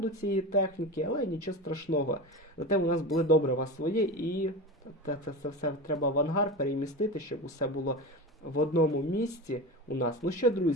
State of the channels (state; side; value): normal; both; correlation 0.26